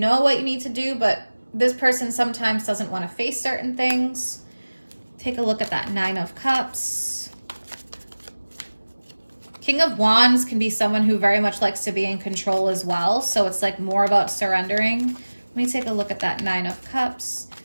what you need to do, but this person sometimes doesn't want to face certain things. Take a look at that 9 of Cups. King of Wands can be someone who very much likes to be in control as well. So it's like more about surrendering. Let me take a look at that 9 of Cups.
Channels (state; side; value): inverted; both; correlation -1.00